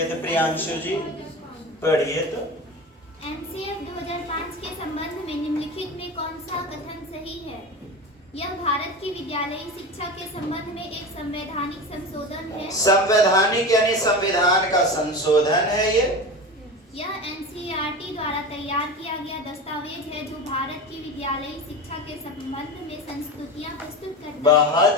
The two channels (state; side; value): normal; both; correlation 0.27